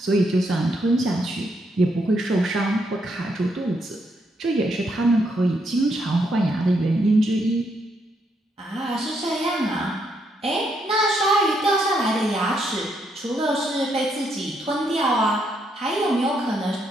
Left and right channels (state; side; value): normal; both; correlation 0.76